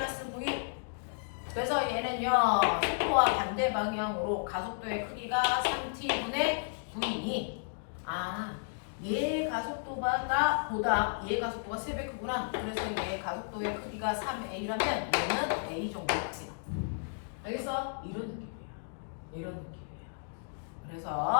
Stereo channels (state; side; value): silent; right; digital silence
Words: V. 그래서 얘는요. 속도와 반대 방향으로 가속도의 크기가 3T분의 V. 얘 가속도보다 얘 가속도가 3배 크구나. 그래서 얘 가속도의 크기가 3A라면 얘는 A 정도 크기다. 알겠어? 이런 느낌이야. 이런 느낌이야.